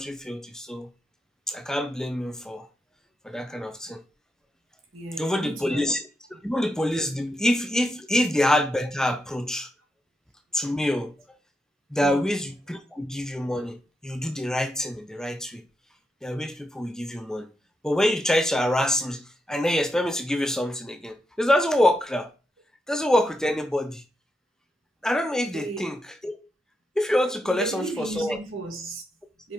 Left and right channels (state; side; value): normal; both; correlation 0.84